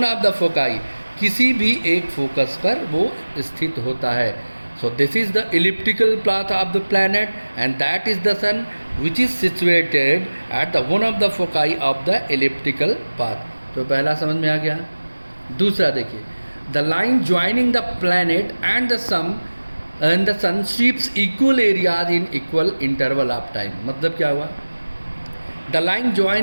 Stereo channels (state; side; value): inverted; both; correlation -1.00